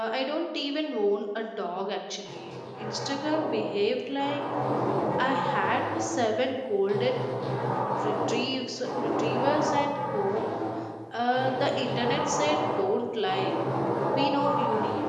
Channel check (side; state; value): both; identical; correlation 1.00